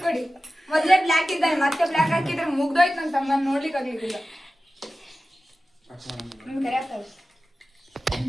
ಕೊಡಿ ಮೊದ್ಲೇ ಬ್ಲಾಕ್ ಇದ್ದಾನೆ ಮತ್ತೆ ಬ್ಲಾಕ್ ಹಾಕಿದ್ರೆ ಮುಗ್ದೋಯ್ತು ನನ್ನ ತಮ್ಮ ನೋಡ್ಲಿಕ್ಕೆ ಆಗ್ಲಿಕ್ಕಿಲ್ಲ ನಿಮ್ಗೆ ಕರೆಯಕ್ತವೆ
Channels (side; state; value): both; normal; correlation 0.95